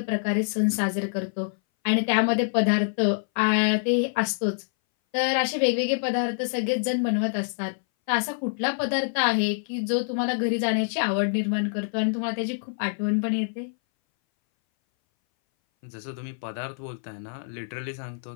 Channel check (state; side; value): silent; right; 59 dB below the other